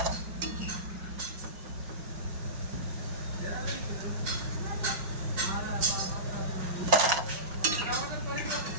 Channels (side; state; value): left; late; 5.4 ms